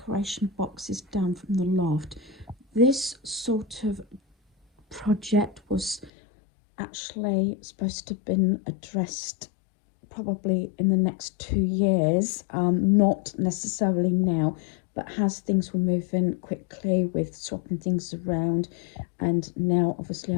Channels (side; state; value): right; drops out; at 6.1 s